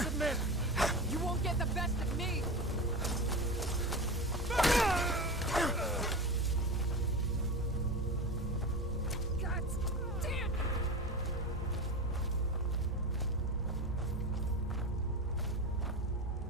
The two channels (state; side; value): normal; both; correlation 0.24